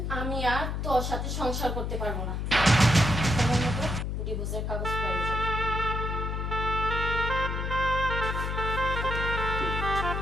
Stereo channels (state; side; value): noise; left; hum, 2 dB below the sound